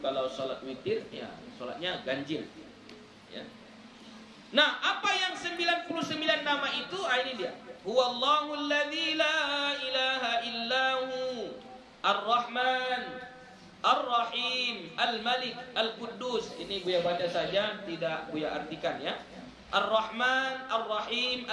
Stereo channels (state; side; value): identical; both; correlation 1.00